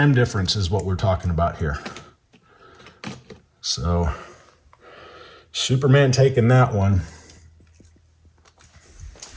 difference is what we're talking about here. So Superman taking that one.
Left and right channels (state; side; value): identical; both; correlation 1.00